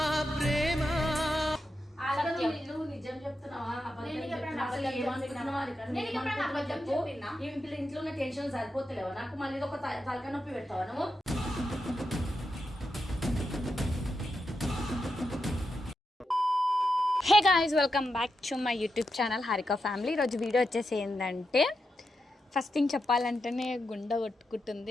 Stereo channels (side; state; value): both; normal; correlation 0.87